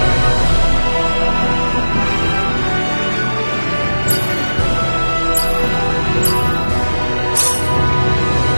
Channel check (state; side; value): inverted; both; correlation -1.00